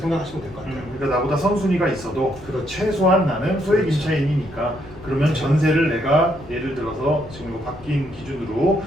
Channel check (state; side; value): noise; left; rumble, 20 dB below the sound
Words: 될 것 같아요. 그러니까 나보다 선순위가 있어도 그렇죠. 최소한 나는 소액 그렇죠. 임차인이니까 그러면 전세를 내가 예를 들어서 지금 이거 바뀐 기준으로